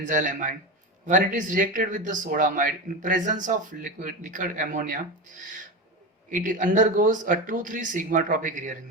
When it is reacted with the sodamide in presence of liquid ammonia, it undergoes a 2,3 sigma tropic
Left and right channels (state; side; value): normal; both; correlation 0.21